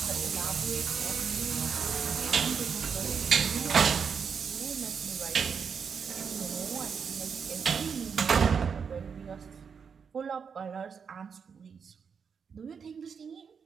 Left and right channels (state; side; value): quieter; left; 6.4 dB